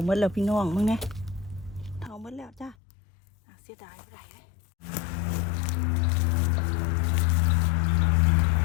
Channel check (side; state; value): right; drops out; at 2.8 s